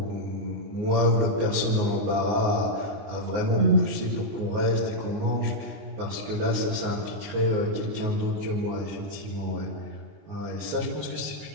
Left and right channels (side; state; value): left; late; 19 ms